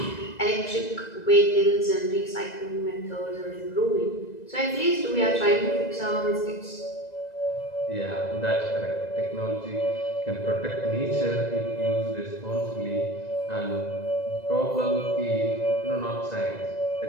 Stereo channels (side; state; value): right; late; 2.0 ms